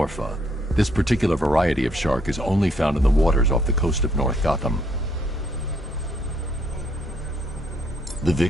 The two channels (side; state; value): both; normal; correlation 0.70